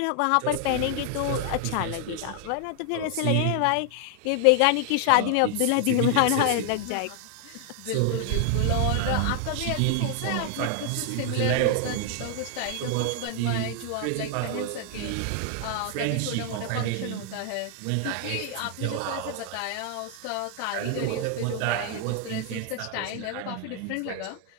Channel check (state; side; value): different; both; correlation 0.00